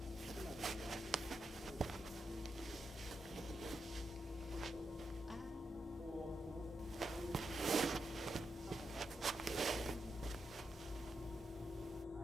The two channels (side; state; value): both; normal; correlation 0.85